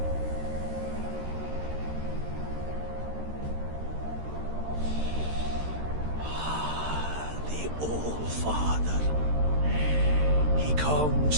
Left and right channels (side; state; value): left; late; 13 ms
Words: The All-Father. He